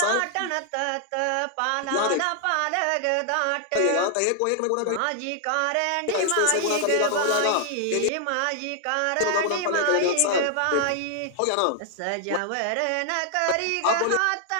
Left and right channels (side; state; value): both; different; correlation 0.00